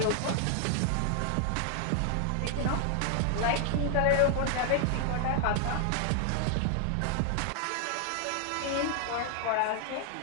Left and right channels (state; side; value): different; both; correlation 0.00